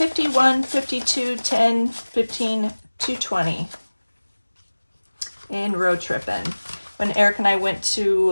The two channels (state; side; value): inverted; both; correlation -1.00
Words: 52, 10, 15, 220 in road tripping. When Eric and I went